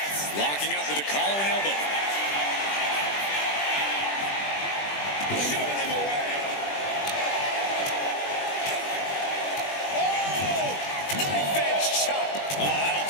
Locking up with the collar and elbow. Shoving him away. Oh! Knife edge chop. Oh, that'll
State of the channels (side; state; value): right; late; 20 ms